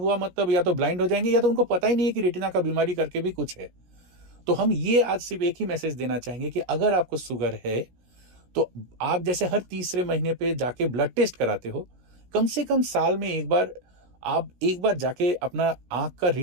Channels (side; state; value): left; late; 17 ms